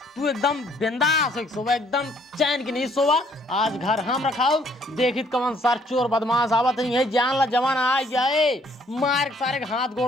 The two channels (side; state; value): both; normal; correlation 0.64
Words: तू एकदम बिंदास सोवा एकदम चैन की नहीं सोवा। आज घर हम रखाओ देखित कौन सार चोर बदमाश आवत नहीं है जान ला जवान आ जाए मार सारे हाथ